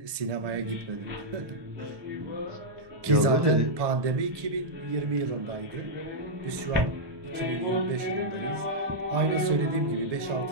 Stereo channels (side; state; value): left; late; 1.1 ms